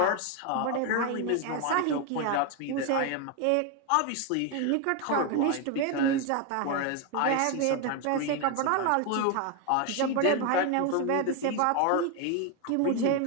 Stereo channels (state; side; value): different; both; correlation 0.01